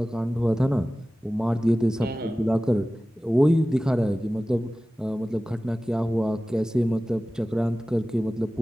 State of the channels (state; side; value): normal; both; correlation 0.96